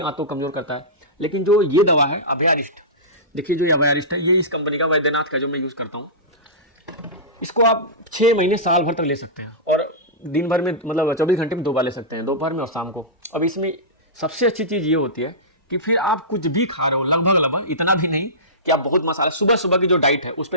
आंतों को कमजोर करता है। लेकिन जो ये दवा है अभयारिस्ट, देखिए जो ये अभयारिस्ट है, ये इस कंपनी का वैद्यनाथ का जो मैं यूज करता हूँ, इसको आप 6 महीने साल भर तक ले सकते हैं और दिन भर में मतलब 24 घंटे में 2 बार ले सकते हैं, दोपहर में और शाम को। अब इसमें सबसे अच्छी चीज़ ये होती है कि फिर आप कुछ भी खा रहे हो, लगभग इतना भी नहीं कि आप बहुत मसाला, सुबह सुबह की जो डाइट है उस पर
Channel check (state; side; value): normal; both; correlation -0.19